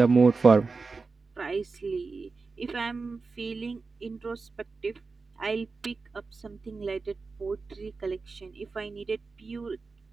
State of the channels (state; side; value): quieter; left; 4.2 dB